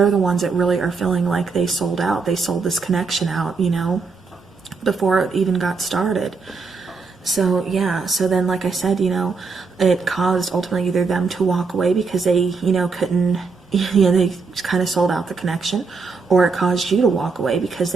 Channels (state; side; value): quieter; left; 4.6 dB